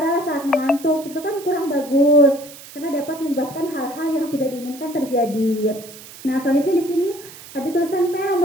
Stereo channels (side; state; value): right; noise; hiss, 17 dB below the sound